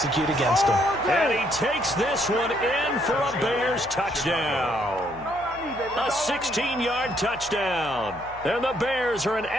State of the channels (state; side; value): noise; left; hum, 20 dB below the sound